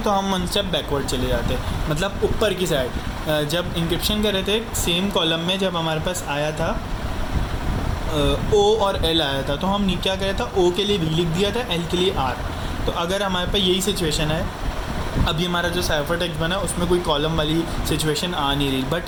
हम 1 स्टेप बैकवर्ड चले जाते, मतलब ऊपर की साइड। जब इंक्रिप्शन कर रहे थे सेम कॉलम में, जब हमारे पास आया था ओ और एल आया था, तो हम क्या किया था, ओ के लिए वी लिख दिया था, एल के लिए आर। तो अगर हमारे पास यही सिचुएशन है, अभी हमारा जो साइफर टेक्स्ट बना उसमें कोई कॉलम वाली सिचुएशन आ नहीं रही,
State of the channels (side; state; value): both; identical; correlation 1.00